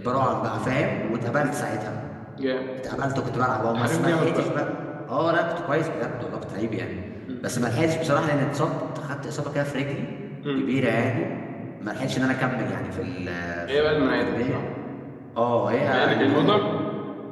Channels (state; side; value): identical; both; correlation 1.00